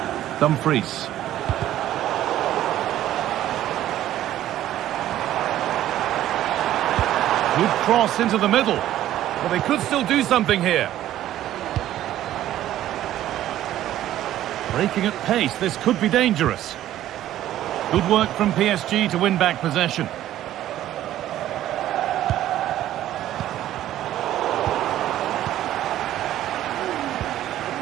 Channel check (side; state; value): left; quieter; 13.0 dB